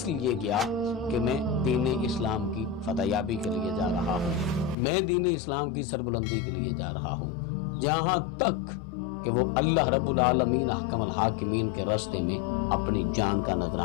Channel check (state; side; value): drops out; right; at 4.8 s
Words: لیے گیا کہ میں دین اسلام کی فتح یابی کے لیے جا رہا ہوں، میں دین اسلام کی سربلندی کے لیے جا رہا ہوں، جہاں تک کہ وہ اللہ رب العالمین احکم الحاکمین کے راستے میں اپنی جان کا